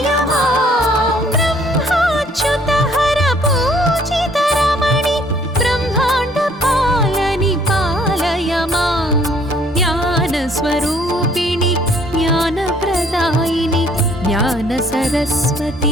माम् ब्रह्माच्युतहर पूजितरमणि ब्रह्माण्डपालनि पालय माम् ज्ञानस्वरूपिणि ज्ञानप्रदायिनि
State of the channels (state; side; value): normal; both; correlation 0.61